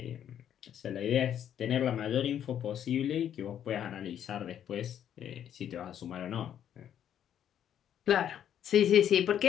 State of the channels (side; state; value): right; quieter; 9.8 dB